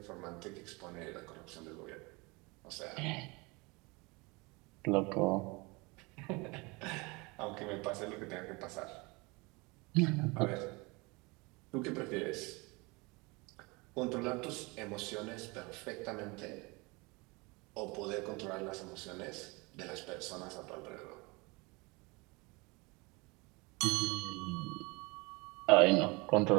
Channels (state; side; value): quieter; left; 26.4 dB